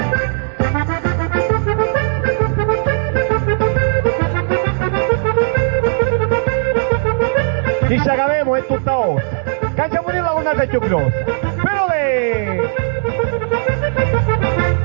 Chissà che avevo è tutta ossa. Cacciamo di la lunata più grossa. Però lei!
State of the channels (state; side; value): silent; left; digital silence